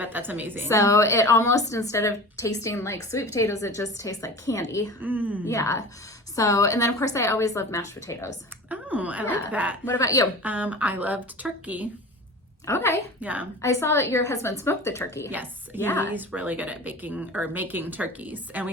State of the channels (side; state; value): both; normal; correlation 0.35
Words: that's amazing. So it almost, instead of tasting like sweet potatoes, it just tastes like candy. Yeah. So, and then of course I always love mashed potatoes. Oh, I like that. What about you? I loved turkey. Okay. Yeah. I saw that your husband smoked the turkey. Yes. Yeah. He's really good at baking or making turkeys. And